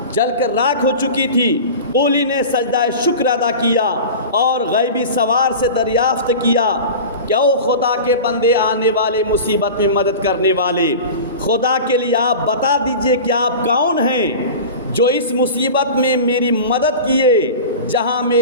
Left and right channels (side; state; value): both; inverted; correlation -0.33